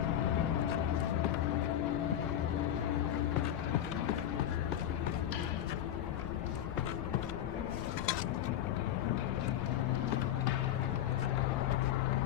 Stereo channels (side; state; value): right; quieter; 11.2 dB